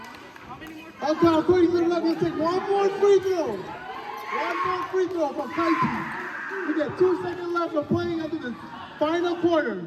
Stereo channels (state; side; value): identical; both; correlation 1.00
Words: Okay, according to the left, he'll take 1 more free throw. 1 more free throw from Kaichi. We got 2 seconds left of playing into the final quarter.